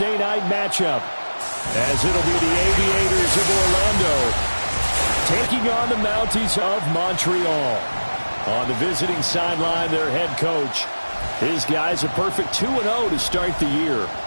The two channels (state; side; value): inverted; both; correlation -1.00